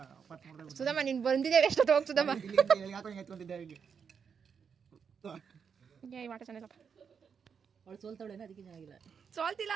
ಸುಧಮ್ಮ ನೀನು ಬಂದಿದ್ದೇವೆ ಎಷ್ಟು ಹೋಗಿ ಸುಧಮ್ಮ. ಈ ಆಟ ಚೆನ್ನಾಗಿಲ್ಲಪ್ಪ. ಅವಳು ಸೋಲ್ತಾವಳೇನ, ಅದಕ್ಕೆ ಚೆನ್ನಾಗಿಲ್ಲ. ಸೋಲ್ತಿಲ್ಲ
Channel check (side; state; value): left; quieter; 6.6 dB